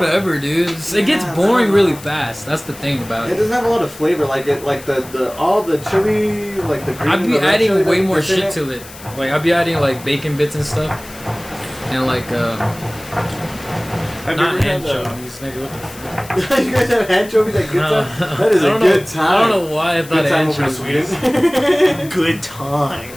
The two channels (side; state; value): left; noise; hiss, 18 dB below the sound